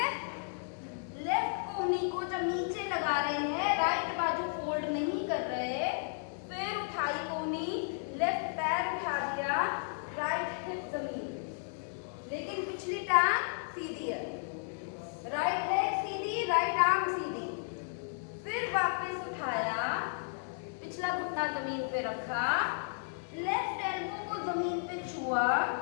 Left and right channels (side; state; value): right; silent; digital silence